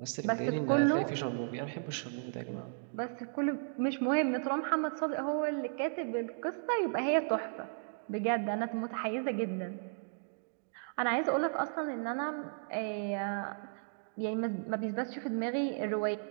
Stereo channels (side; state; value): left; silent; digital silence